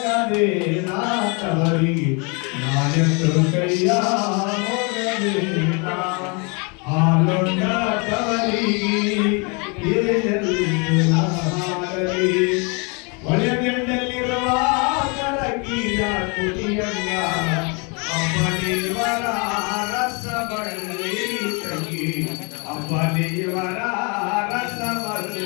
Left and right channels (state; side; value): quieter; right; 32.4 dB